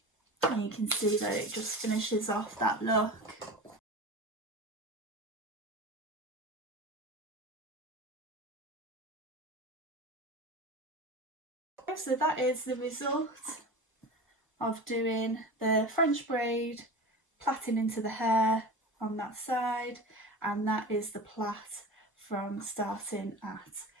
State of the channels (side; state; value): both; normal; correlation 0.30